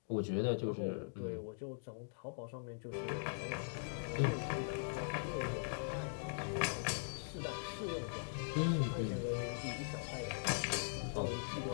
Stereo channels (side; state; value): right; silent; digital silence